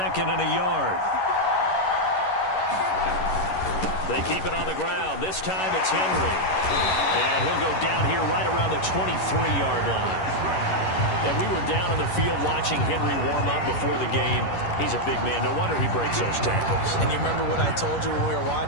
and a yard. They keep it on the ground. This time it's Henry. And he'll go down here right around the 23-yard line. And we were down on the field watching Henry warm up before the game. He's a big man. No wonder he breaks those tackles. And you remember what I told you when we were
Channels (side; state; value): right; late; 11 ms